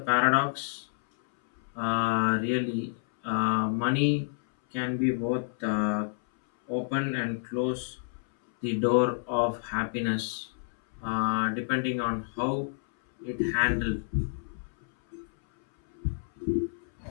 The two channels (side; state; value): right; silent; 59 dB below the other